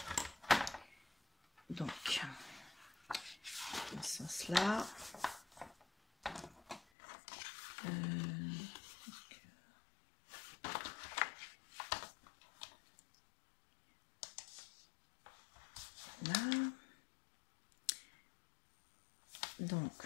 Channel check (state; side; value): drops out; right; at 6.8 s